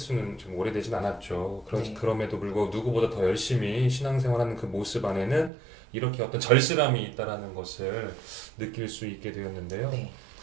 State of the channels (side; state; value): left; drops out; at 5.5 s